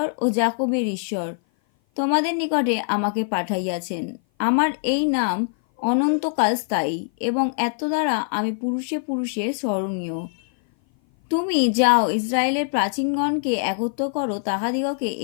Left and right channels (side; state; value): right; silent; 57 dB below the other